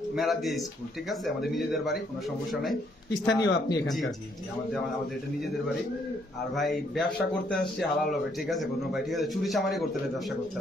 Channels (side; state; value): both; normal; correlation 0.70